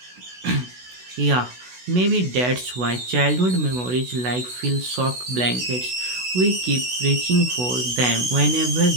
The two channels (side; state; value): left; late; 16 ms